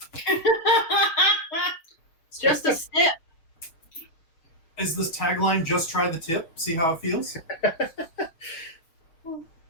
It's just a sip. Is this tagline "Just try the tip, see how it feels"?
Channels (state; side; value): late; right; 6.2 ms